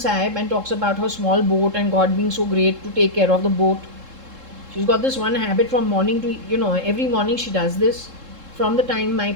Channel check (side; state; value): left; late; 3.7 ms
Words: Sahib and talks about her small boat and God being so great to take care of the boat. She's got this one habit from morning to, every morning she does this from the time